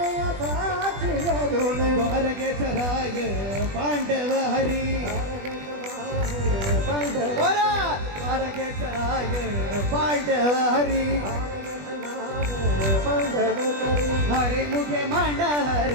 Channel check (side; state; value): left; late; 20 ms